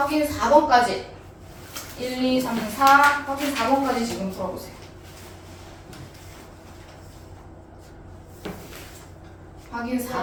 4번까지 1, 2, 3, 4 확인 4번까지 지금 풀어보세요. 확인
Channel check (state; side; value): identical; both; correlation 1.00